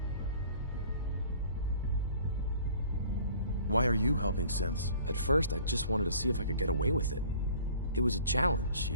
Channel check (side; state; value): both; inverted; correlation -0.50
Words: Why are you helping synths? At first, I just wanted to see if I could get away with it. It was a challenge,